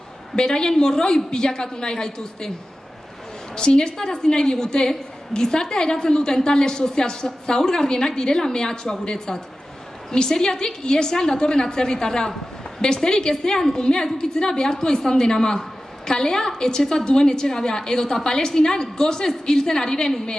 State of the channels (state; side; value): normal; both; correlation 0.94